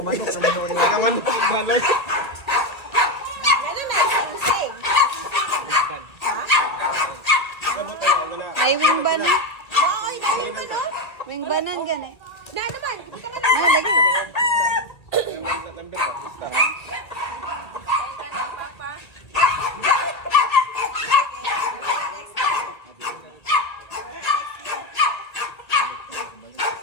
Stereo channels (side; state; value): right; late; 1.8 ms